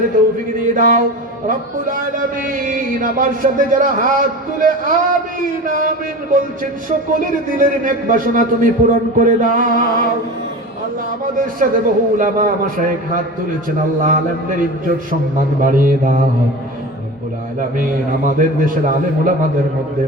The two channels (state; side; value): normal; both; correlation 0.31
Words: তৌফিক দিয়ে দাও রব্বুল আলামিন। আমার সাথে যারা হাত তুলে আমিন আমিন বলছেন সকলের দিলের নেক বাসনা তুমি পূরণ করে দাও। আল্লাহ আমাদের সাথে বহু উলামা মাশায়েখ হাত তুলেছেন, আল্লাহ আলেমদের ইজ্জত সম্মান বাড়িয়ে দাও রব্বুল আলামিন। আমাদের দেশের আলেম উলামাদের মধ্যে